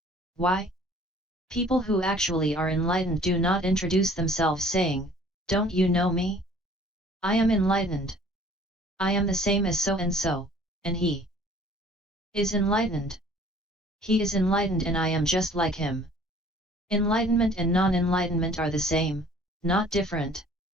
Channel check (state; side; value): normal; both; correlation 0.53